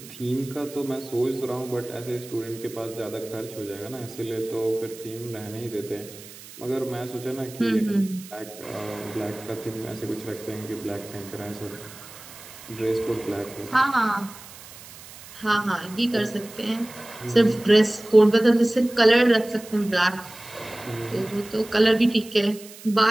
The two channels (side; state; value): right; noise; hiss, 17 dB below the sound